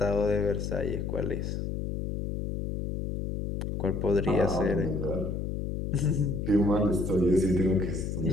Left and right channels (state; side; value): noise; left; hum, 3 dB below the sound